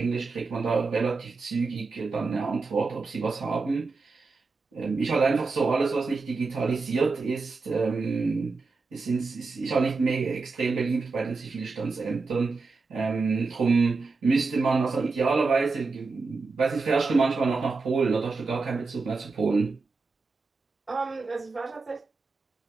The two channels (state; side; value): quieter; left; 4.1 dB